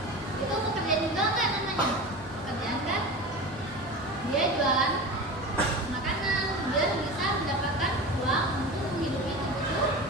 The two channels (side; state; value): both; normal; correlation 0.30